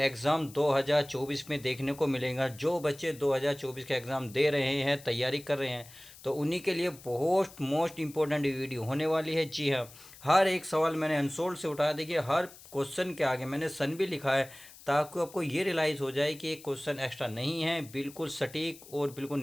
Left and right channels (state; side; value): noise; left; hiss, 20 dB below the sound